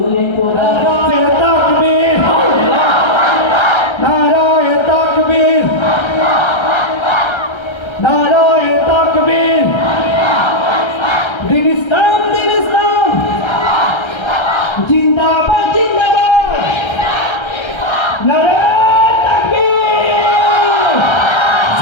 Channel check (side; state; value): right; late; 1.3 ms